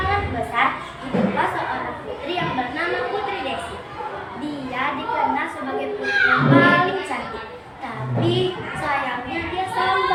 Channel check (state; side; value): identical; both; correlation 1.00